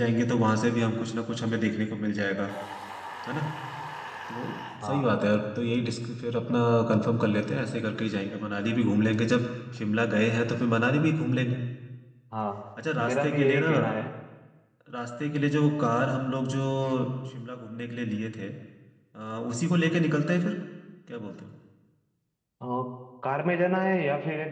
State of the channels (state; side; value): identical; both; correlation 1.00